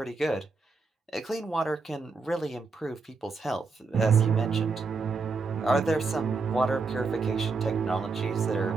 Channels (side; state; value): left; quieter; 4.2 dB